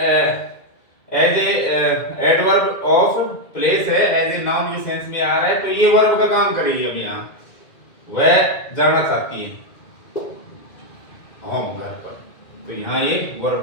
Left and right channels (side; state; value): right; late; 2.1 ms